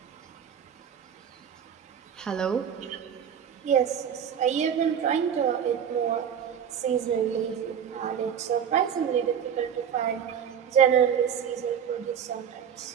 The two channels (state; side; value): quieter; left; 8.3 dB